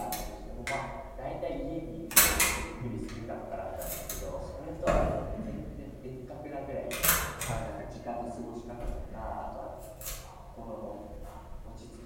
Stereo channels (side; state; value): both; identical; correlation 1.00